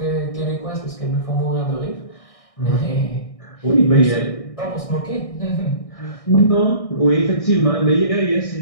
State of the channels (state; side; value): late; right; 1.6 ms